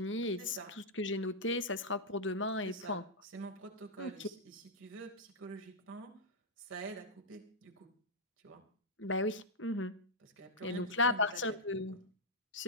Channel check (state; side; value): normal; both; correlation -0.06